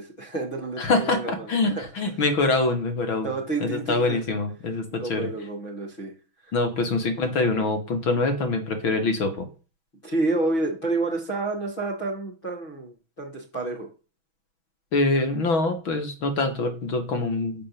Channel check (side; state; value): right; late; 6.2 ms